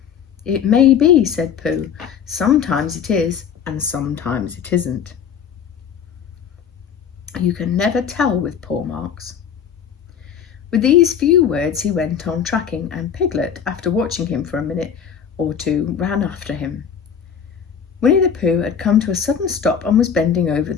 It may be, said Pooh. Sometimes it is, and sometimes it isn't. You can never tell with paw marks. With these few words he went on tracking, and Piglet, after watching him for a minute or two, ran after him. Winnie the Pooh had come to a sudden stop and was bending over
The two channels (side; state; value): right; quieter; 7.6 dB